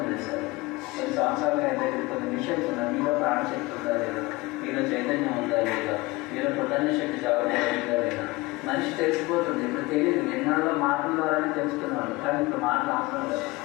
చేశారు. కొన్ని సంవత్సరాలుగా అయితే కొన్ని మిషన్స్ ఉన్నాయి. మీలో ప్రాణశక్తి ఉందా లేదా, మీలో చైతన్యం ఉందా లేదా, మీలో పొద్దున్న శక్తి చదవలేదా లేదా, మనిషి తెలిసిపోతుంది. ఇప్పుడు తెలియదు, నిన్నాళ్ళలో మాటల ద్వారానే తెలుసుకున్నాడు, కానీ ఇప్పుడు మాటలు అవసరం లేదు.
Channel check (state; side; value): quieter; right; 21.9 dB